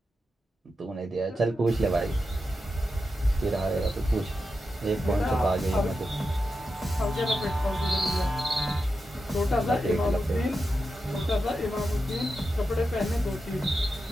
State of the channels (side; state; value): both; normal; correlation 0.89